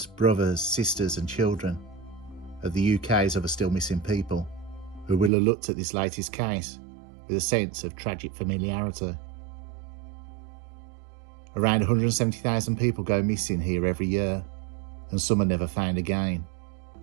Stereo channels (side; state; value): left; drops out; at 5.3 s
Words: brothers, sisters and children of the UK's other still missing people, who will have looked at this latest case with a sense of tragic familiarity. Around 170,000 people go missing here every year, and some are never found again,